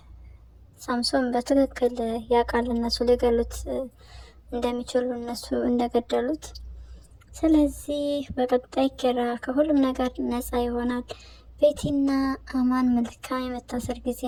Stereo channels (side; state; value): both; identical; correlation 1.00